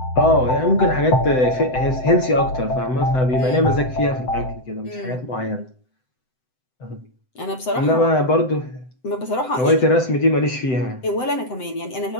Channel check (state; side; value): late; right; 7.8 ms